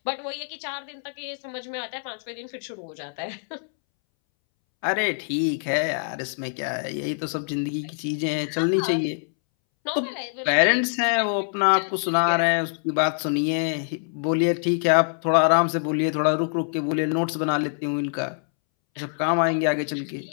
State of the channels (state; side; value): silent; right; 62 dB below the other